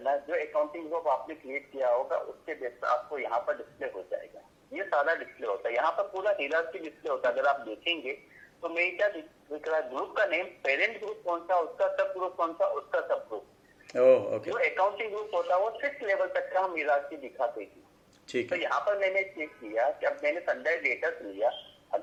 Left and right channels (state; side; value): identical; both; correlation 1.00